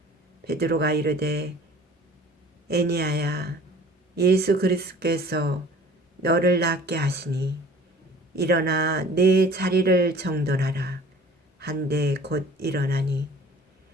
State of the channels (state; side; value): normal; both; correlation 0.48